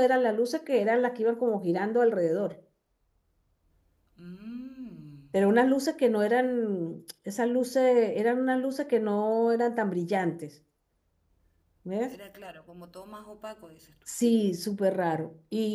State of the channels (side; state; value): both; identical; correlation 1.00